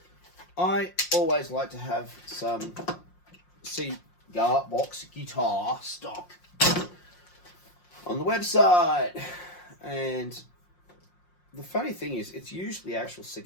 I always like to have some Cigar Box guitar stock on the website, and the funny thing is it's usually actual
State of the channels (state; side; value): late; right; 5.6 ms